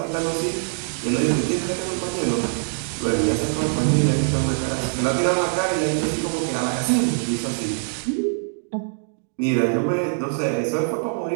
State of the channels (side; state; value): left; silent; digital silence